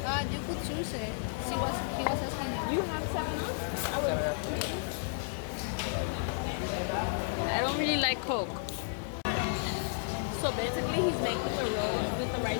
You could choose it. He was asking. You have 7-Up? I don't really like Coke. So basically he's making the rolls with the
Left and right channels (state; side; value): silent; right; digital silence